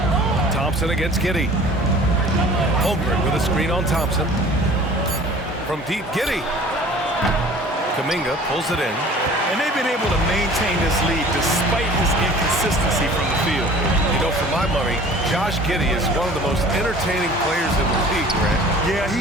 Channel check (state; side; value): normal; both; correlation 0.46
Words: Thompson against Giddey. Holmgren with a screen on Thompson. From deep, Giddey. Kuminga pulls it in. And they've been able to maintain this lead despite his inconsistency from the field. You know, for my money, Josh Giddey is one of the most entertaining players in the league, Grant. Yeah,